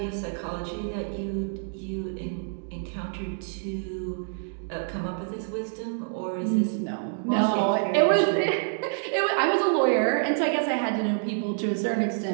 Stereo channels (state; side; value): silent; left; digital silence